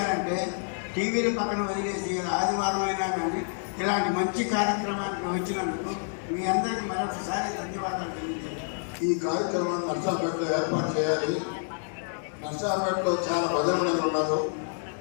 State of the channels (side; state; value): right; silent; 59 dB below the other